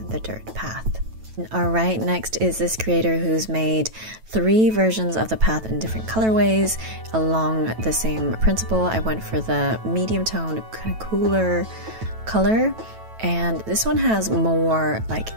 the dirt path. Alright, next is this creator who's made 3 versions of the path in different colorways along the same principle. I went for the medium toned, kind of cooler color. And this one has more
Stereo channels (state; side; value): late; left; 9.1 ms